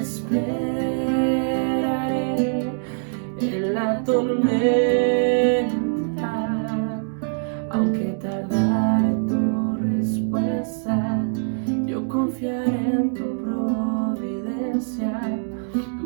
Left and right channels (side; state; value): left; silent; digital silence